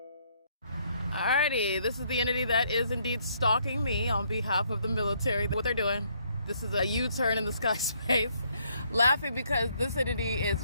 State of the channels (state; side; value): inverted; both; correlation -0.69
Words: Alrighty, this is the entity that is indeed stalking me on behalf of the military. What they're doing. This is a U-turn in the sky space. Laughing because this entity is